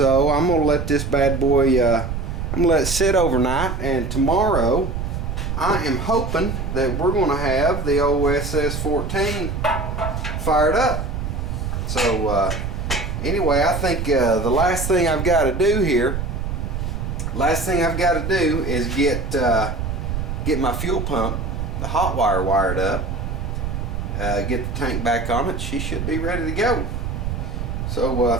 I'm going to let this bad boy, I'm going to let it sit overnight, and tomorrow I am hoping that we're going to have the old SS-14 fired up. So Anyway, I think the last thing I've got to do here, is get my fuel pump, the hot wire, wired up, get the tank back on it. She should be ready to go. So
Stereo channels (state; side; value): noise; right; rumble, 3 dB below the sound